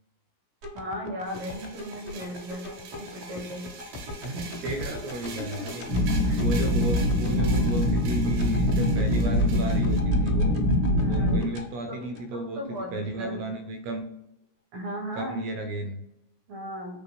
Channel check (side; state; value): left; late; 17 ms